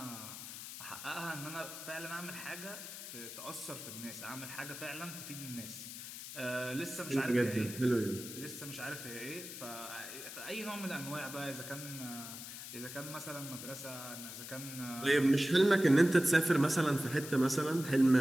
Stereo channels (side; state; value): left; noise; hiss, 10 dB below the sound